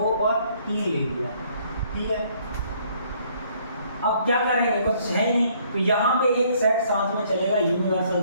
और 3 ले लिया। ठीक है। अब क्या करेंगे? कुछ है नहीं। तो यहाँ पे एक सेट साथ में चलेगा, यूनिवर्सल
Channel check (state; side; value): inverted; both; correlation -0.64